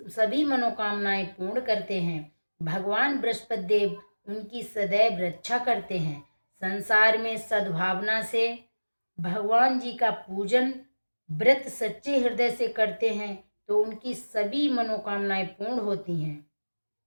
मनोकामनाएं पूर्ण करते हैं। भगवान बृहस्पति देव उनकी सदैव रक्षा करते हैं। संसार में सद्भावना से भगवान जी का पूजन व्रत सच्चे हृदय से करते हैं तो उनकी सभी मनोकामनाएं पूर्ण होती हैं।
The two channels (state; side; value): inverted; both; correlation -1.00